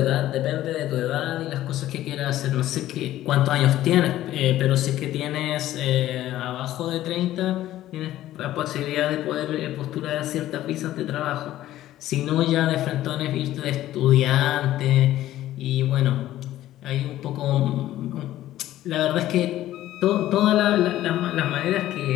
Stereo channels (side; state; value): right; quieter; 14.0 dB